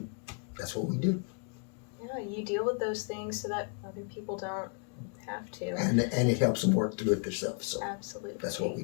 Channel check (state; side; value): quieter; right; 39.7 dB